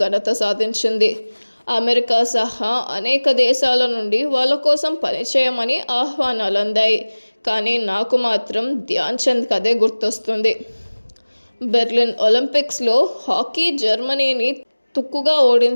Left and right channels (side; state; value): both; inverted; correlation -1.00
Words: ఘనత సాధించింది. అమెరికా సహా అనేక దేశాల నుండి వాళ్ళ కోసం పనిచేయమని ఆహ్వానాలు అందాయి. కానీ నాకు మాత్రం ధ్యాన్ చంద్ కథే గుర్తొస్తుంది. బెర్లిన్ ఒలింపిక్స్లో హాకీ జర్మనీని తుక్కుగా